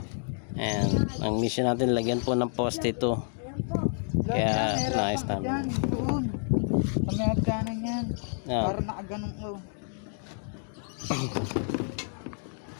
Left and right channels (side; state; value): right; silent; 58 dB below the other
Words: And ang mission natin, lagyan po ng poste ito. Kaya nice naman. Kami hagkanan yan. Para nakaganong ko.